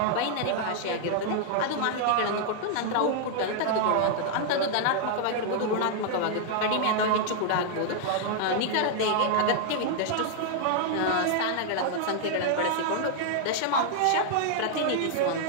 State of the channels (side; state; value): both; different; correlation -0.01